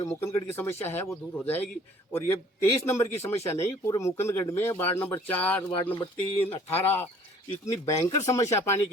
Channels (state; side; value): normal; both; correlation 0.54